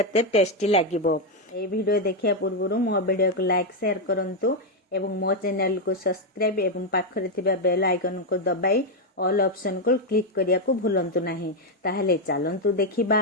टेस्टी लागिबो। ए वीडियो देखिया पूर्व मो वीडियो को लाइक शेयर करंतु एवं मो चैनल को सब्सक्राइब एवं पाखरे थिबा बेल आइकन को दबाई ऑल ऑप्शन को क्लिक करिया को भूलंतु नहीं। ताहले चलंतु देखिबा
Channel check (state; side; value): normal; both; correlation 0.03